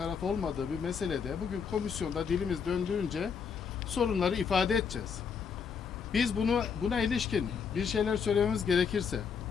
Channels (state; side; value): quieter; right; 6.4 dB